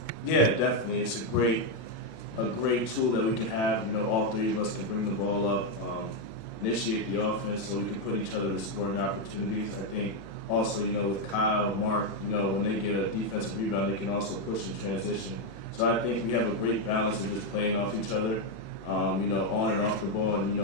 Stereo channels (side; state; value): right; late; 36 ms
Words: Yeah, definitely. It's a great tool that we can have. You know, all three of us can bring the ball up, initiate the offense, so we can put each other in scoring opportunities. I think also, you know, with Kyle, Mark, you know, when they get a defensive rebound, they can also push in transition. So I think we have a great balance of just playing off each other, you know, on and off the ball, and you